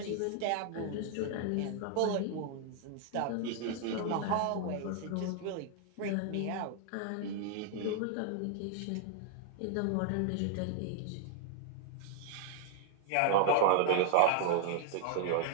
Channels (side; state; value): both; different; correlation 0.00